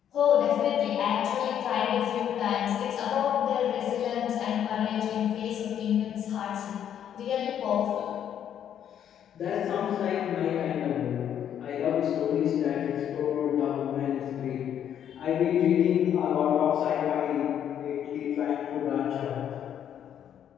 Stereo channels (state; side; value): quieter; right; 9.6 dB